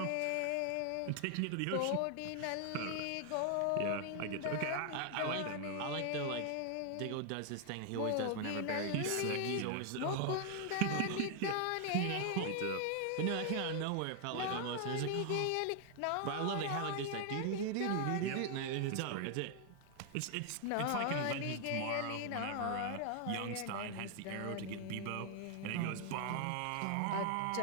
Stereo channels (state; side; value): different; both; correlation 0.00